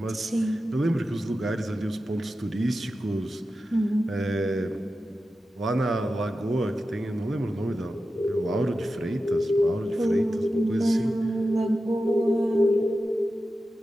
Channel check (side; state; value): both; normal; correlation 0.92